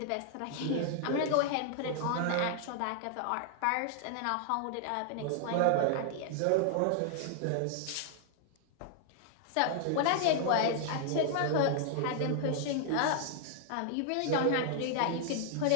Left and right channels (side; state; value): both; different; correlation -0.01